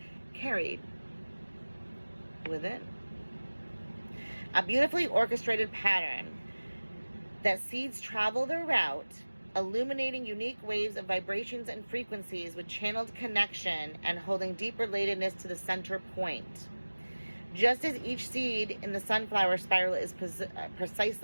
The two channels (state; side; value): inverted; both; correlation -1.00